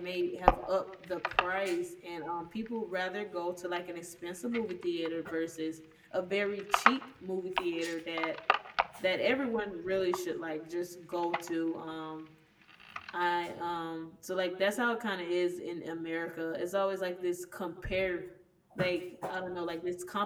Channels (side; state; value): both; identical; correlation 1.00